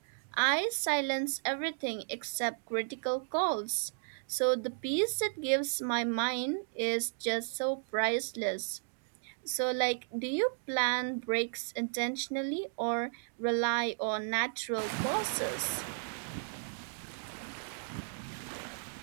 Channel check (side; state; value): left; silent; digital silence